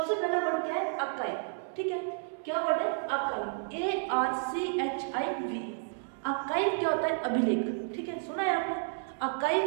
पहला वर्ड क्या है, अकाई। ठीक है, क्या वर्ड है, अकाई, ARCHIV। अकाई क्या होता है, अभिलेख। ठीक है, सुना है आपने, अकाई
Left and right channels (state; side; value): silent; left; 57 dB below the other